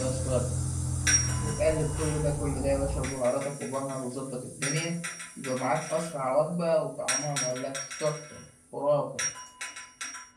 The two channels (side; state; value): both; identical; correlation 1.00